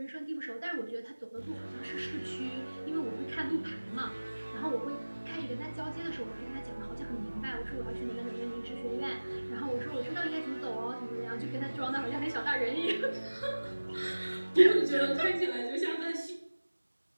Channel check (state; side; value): inverted; both; correlation -1.00